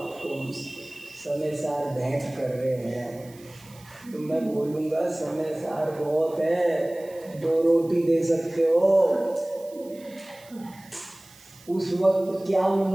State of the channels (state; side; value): noise; right; hiss, 24 dB below the sound